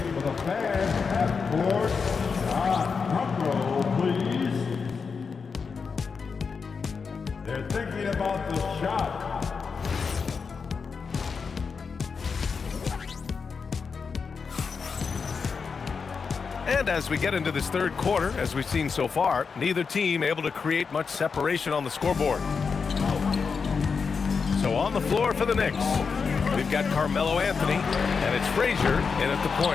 for the fans at court. Shot. Drum roll, please. They're thinking about the shot. And as we get into this third quarter, as we've seen so far, neither team able to create much separation on the scoreboard. So on the floor for the Knicks, we've got Carmelo Anthony, and it's Frazier in at the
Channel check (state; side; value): quieter; right; 5.4 dB